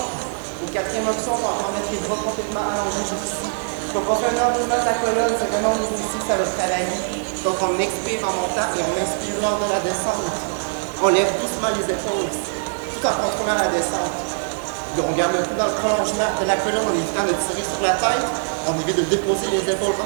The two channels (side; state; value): left; silent; digital silence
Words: Et quatrième option, on va encore mettre les bras complètement allongés jusqu'ici. Donc, on fait un enroulement de la colonne, c'est vraiment au niveau ici que ça va travailler. Donc, on expire en montant et on inspire lors de la descente. On lève doucement les épaules, tout en contrôlant la descente. On garde le coup dans le prolongement de la colonne en évitant de tirer sur la tête. On évite de déposer les épaules